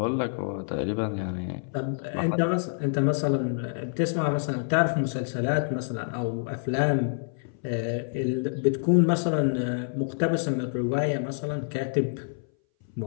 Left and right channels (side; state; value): right; silent; 58 dB below the other